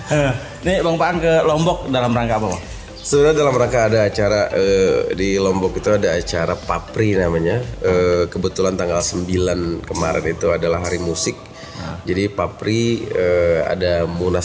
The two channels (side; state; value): both; identical; correlation 1.00